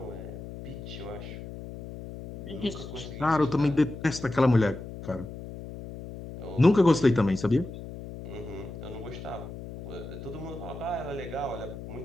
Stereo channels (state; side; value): noise; left; hum, 11 dB below the sound